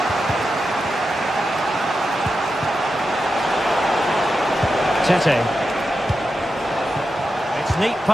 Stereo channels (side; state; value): both; normal; correlation 0.89